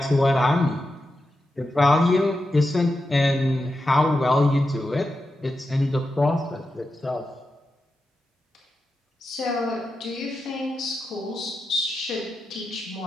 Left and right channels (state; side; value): normal; both; correlation 0.89